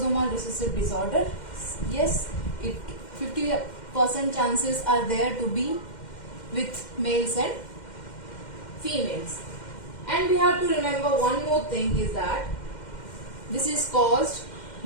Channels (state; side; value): late; right; 2.1 ms